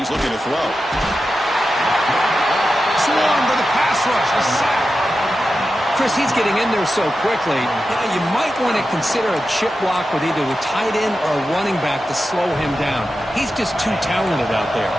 looking to throw. Swarm to the pass rush. A sack. Chris, he's getting in there so quickly. You might want to consider a chip block with either the tight end or a running back to slow him down. He's just too talented out there.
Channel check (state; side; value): normal; both; correlation 0.91